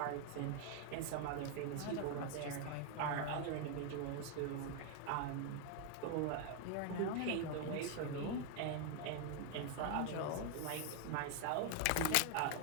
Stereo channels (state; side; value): different; both; correlation 0.00